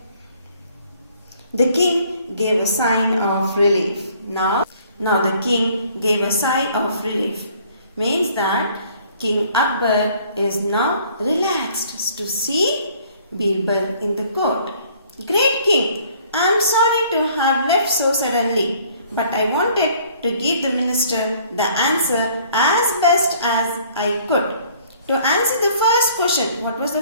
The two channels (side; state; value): both; inverted; correlation -0.58